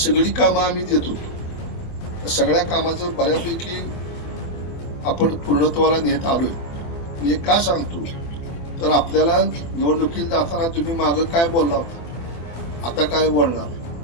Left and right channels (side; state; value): right; late; 24 ms